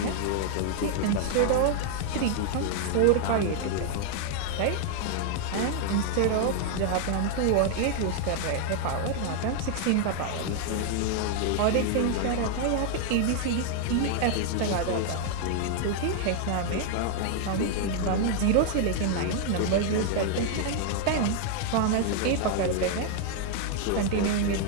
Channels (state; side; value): different; both; correlation 0.00